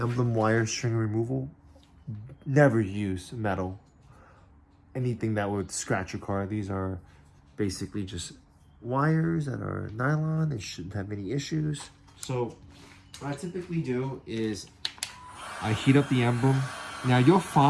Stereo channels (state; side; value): identical; both; correlation 1.00